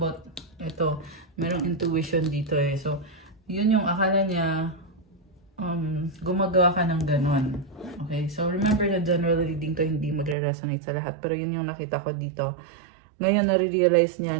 ito. Merong intuition dito eh. So, yun yung akala niya gumagawa ka ng ganon. Okay? So, remember na general reading to hindi magre-resonate sa lahat. Pero yun yung nakita ko dito. Ngayon, nare-realize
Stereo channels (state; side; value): drops out; left; at 10.4 s